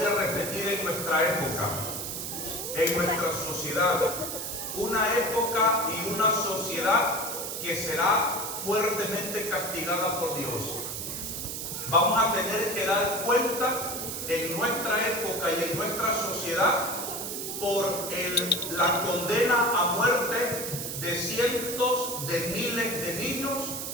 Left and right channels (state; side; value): noise; right; hiss, 5 dB below the sound